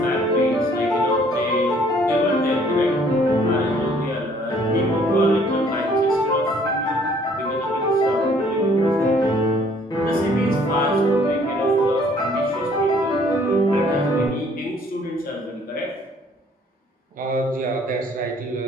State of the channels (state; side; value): normal; both; correlation 0.60